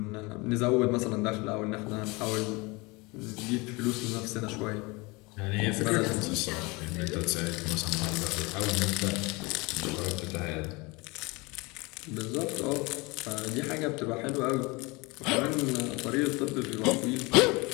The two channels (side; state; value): right; quieter; 25.7 dB